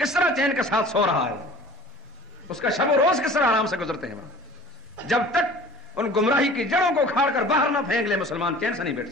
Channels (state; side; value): normal; both; correlation 0.45